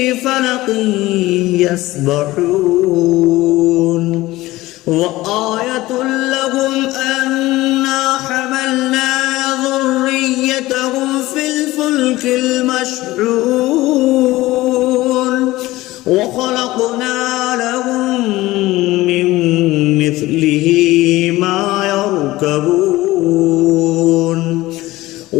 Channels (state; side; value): quieter; right; 18.0 dB